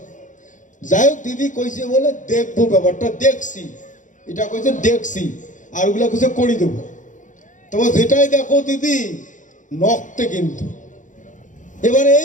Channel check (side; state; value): right; late; 0.37 ms